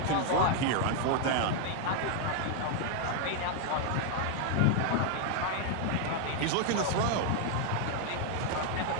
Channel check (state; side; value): different; both; correlation 0.00